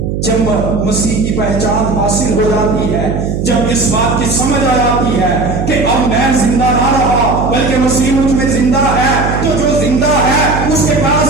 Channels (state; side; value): noise; right; hum, 3 dB below the sound